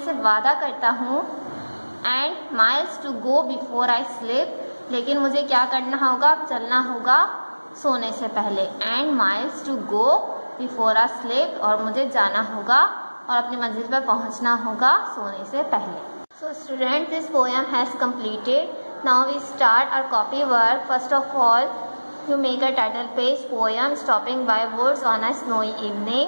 वादा करता हूँ. And miles to go before I sleep. लेकिन मुझे क्या करना होगा? चलना होगा सोने से पहले. And miles to go before I sleep. और मुझे जाना होगा और अपनी मंजिल पर पहुंचना होगा सोने से पहले. So students, this poem has completed. Now we start our copy work. First of all, you make a title page poem stopping by words on a snowy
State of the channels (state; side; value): inverted; both; correlation -1.00